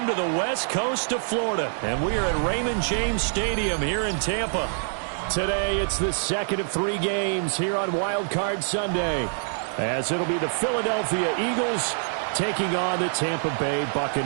to the west coast of Florida, and we are at Raymond James Stadium here in Tampa. Today, it's the second of 3 games here on Wild Card Sunday, as it'll be the Philadelphia Eagles taking on the Tampa Bay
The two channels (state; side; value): silent; left; digital silence